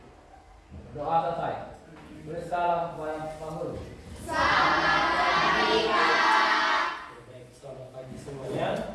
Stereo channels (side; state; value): both; identical; correlation 1.00